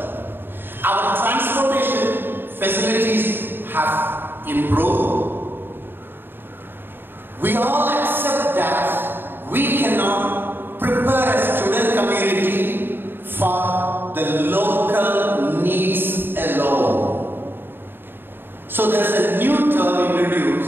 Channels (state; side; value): late; left; 0.099 ms